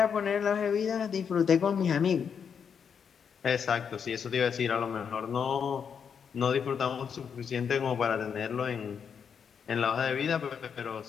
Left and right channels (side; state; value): right; quieter; 7.0 dB